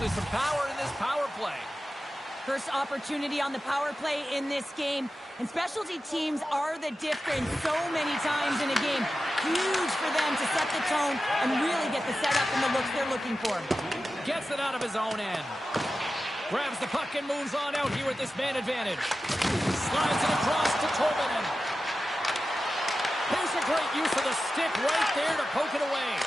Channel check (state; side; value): normal; both; correlation 0.93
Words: some power in this power play. First opportunity on the power play in this game, and specialty teams are the difference so many times in a game. Huge for them to set the tone and really get the setup and the looks they're looking for. Gets it out of his own end. Grabs the puck and moves on out here with this man advantage. Slides it across to Tolvanen. Here's a great use of the stick right there to poke it away.